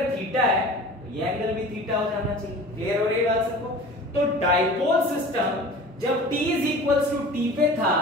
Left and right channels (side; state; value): both; normal; correlation 0.40